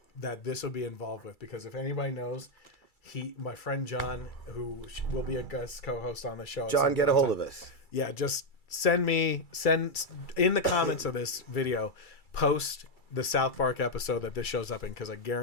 this will be involved with, because if anybody knows, my friend John, who will be a guest co-host on the show. John, get a hold of us. Yeah, just send in the comments of this video, post the South Park episode that this shows up in, because I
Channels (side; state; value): right; late; 2.3 ms